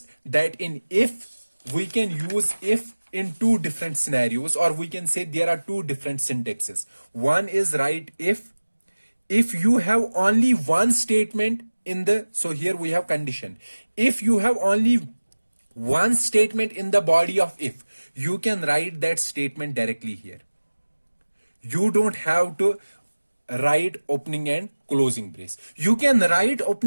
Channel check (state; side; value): inverted; both; correlation -1.00